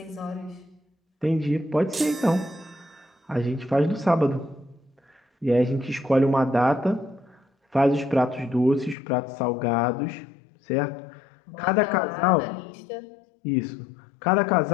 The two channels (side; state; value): right; drops out; at 9.0 s